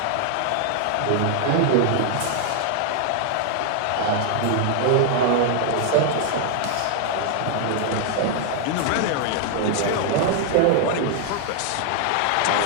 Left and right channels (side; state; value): both; different; correlation 0.00